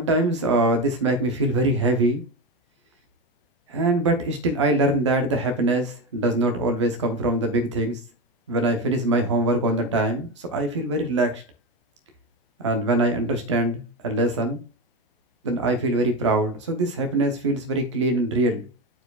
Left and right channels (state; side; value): normal; both; correlation 0.18